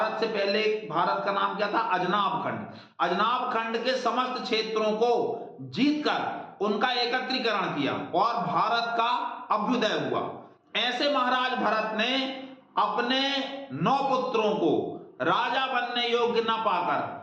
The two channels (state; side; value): identical; both; correlation 1.00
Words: से पहले भारत का नाम क्या था? अजनाब खंड के समस्त क्षेत्रों को जीतकर उनका एकत्रीकरण किया और भारत का अभ्युदय हुआ। ऐसे महाराज भरत ने अपने 9 पुत्रों को राजा बनने योग्य न पाकर,